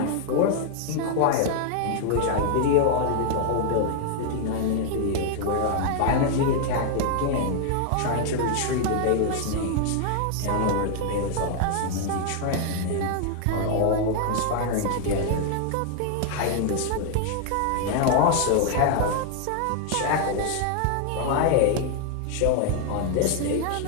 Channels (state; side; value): different; both; correlation 0.00